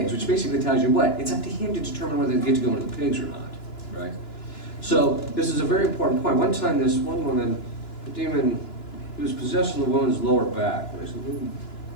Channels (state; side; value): late; right; 2.9 ms